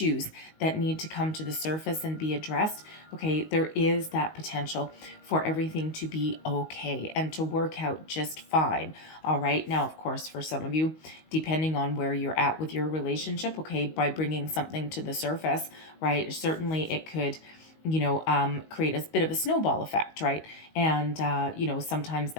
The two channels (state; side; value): late; right; 19 ms